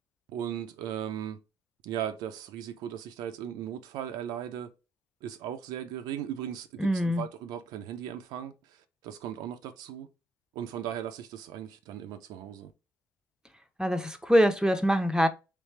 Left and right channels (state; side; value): normal; both; correlation 0.80